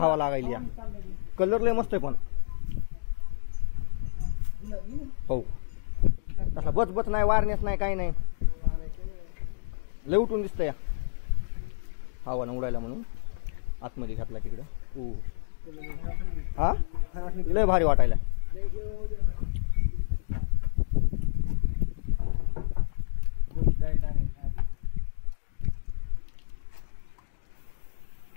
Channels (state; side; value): silent; right; digital silence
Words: लागायली या. कलर लय मस्त आहे पण. हो तसा बच बच नाही, वारनेस नाही, काही नाही, लय उठून दिसतंय. हवा न उडायला म्हणून आतमध्ये घातला तिकडं. हो हा लय भारी वाटायला.